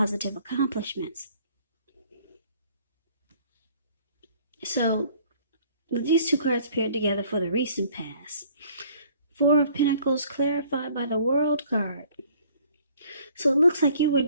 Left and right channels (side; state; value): both; inverted; correlation -0.57